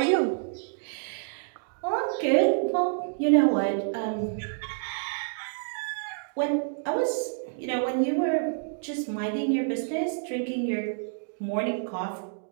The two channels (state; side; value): silent; left; digital silence